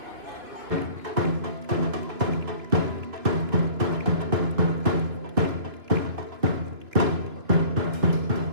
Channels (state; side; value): late; left; 3.1 ms